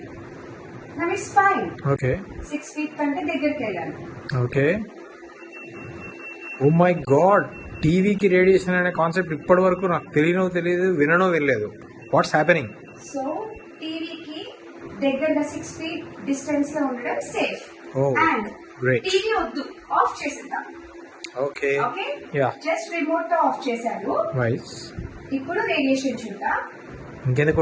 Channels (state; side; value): identical; both; correlation 1.00